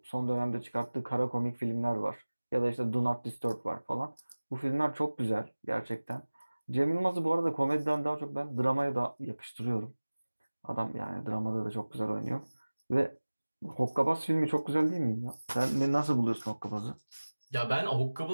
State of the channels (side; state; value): both; inverted; correlation -1.00